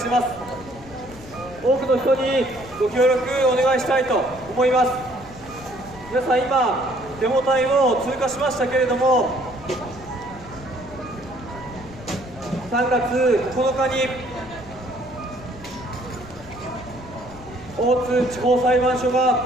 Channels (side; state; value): left; noise; rumble, 19 dB below the sound